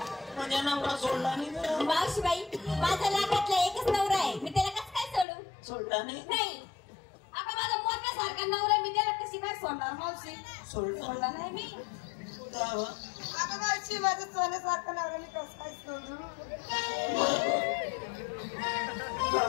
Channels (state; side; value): drops out; right; at 5.2 s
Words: मावशीबाई माझा लाखातला एकच नवरा आहे, मी त्याला कसं काय सोडू? सोडला नाही. आता माझा मोठ्यासारखा नवरा मी त्याला कशी काय सोडणार मावशी? सोडला नाही मी. आता मावशी माझा सोन्यासारखा नवरा मी कसं काय सोडू?